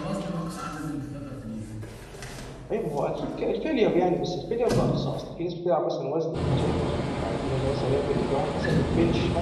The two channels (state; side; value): identical; both; correlation 1.00